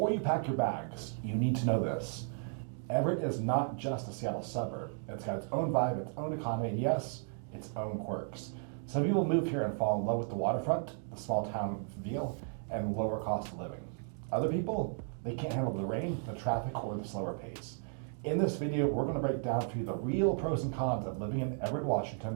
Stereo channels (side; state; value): left; silent; 55 dB below the other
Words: you pack your bags, you need to know this. Everett is not just a Seattle suburb. It's got its own vibe, its own economy, and yes, its own quirks. Some people move here and fall in love with the waterfront, the small town feel, and lower cost of living. Other people, they can't handle the rain, the traffic, or the slower pace. In this video, we're gonna break down for you the real pros and cons of living in Everett,